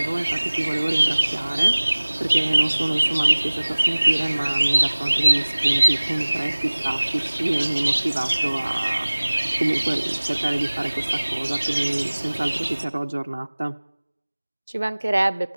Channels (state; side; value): inverted; both; correlation -1.00